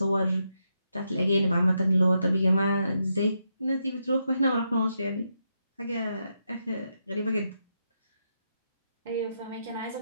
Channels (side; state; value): both; inverted; correlation -0.82